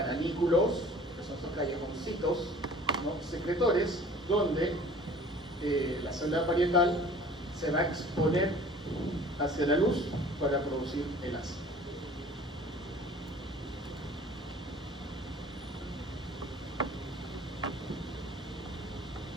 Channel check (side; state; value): both; normal; correlation 0.48